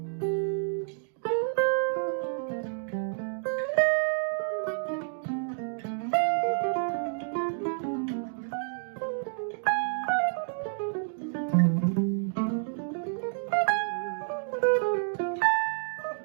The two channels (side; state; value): left; silent; digital silence